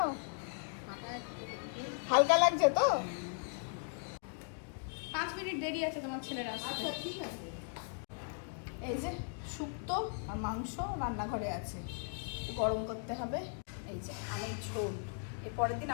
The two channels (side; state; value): right; silent; 53 dB below the other